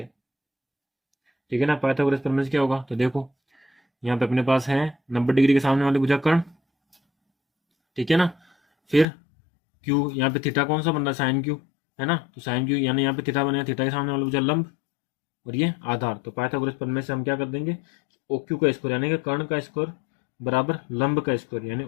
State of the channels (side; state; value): right; drops out; at 9.1 s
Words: ठीक है ना। पाइथागोरस प्रमेय से क्या होगा, तो देखो यहाँ पे अपने पास है 90 डिग्री के सामने वाले भुजाकर्ण, ठीक है ना। फिर Q, यहाँ पे थीटा कौन सा बन रहा है, साइन Q, है ना, तो साइन Q यानी यहाँ पे थीटा बनेगा, थीटा के सामने वाला भुजा लंब, और ये आधार, तो पाइथागोरस प्रमेय से हम क्या कर देंगे, OQ का स्क्वायर यानी कि कर्ण का स्क्वायर बराबर लंब का स्क्वायर यानी